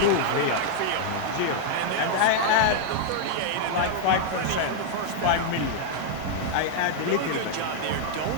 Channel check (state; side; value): different; both; correlation 0.00